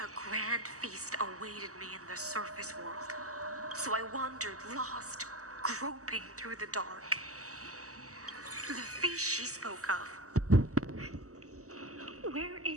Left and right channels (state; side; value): late; left; 0.66 ms